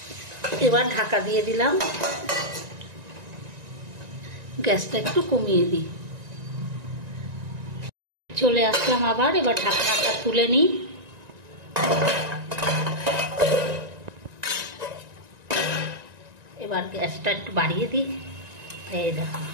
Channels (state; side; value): late; left; 1.9 ms